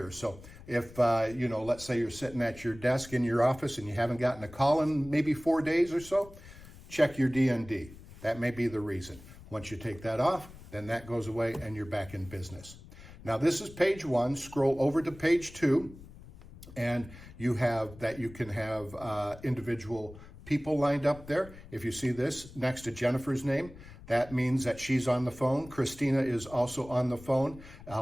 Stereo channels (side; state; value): left; noise; rumble, 18 dB below the sound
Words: So if, let's say you're sitting at your desk in your office and you haven't gotten a call in maybe 4 days or so, check your DND. That may be the reason. Once you take that off, then that goes away and you're back in business. Now this is page 1. Scroll over to page 2, and you have that you can have individual people lined up there. If you see this next to Jennifer's name, that means that she's on the phone. Christina is also on the phone.